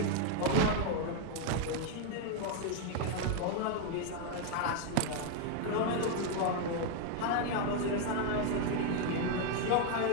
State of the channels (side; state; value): both; different; correlation 0.01